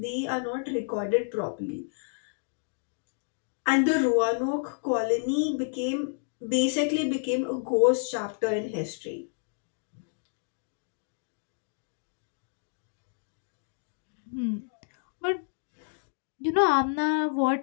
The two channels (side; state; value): right; silent; digital silence